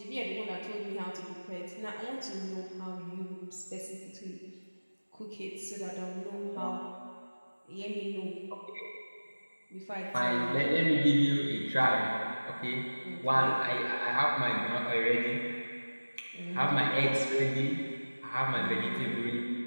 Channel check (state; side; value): inverted; both; correlation -1.00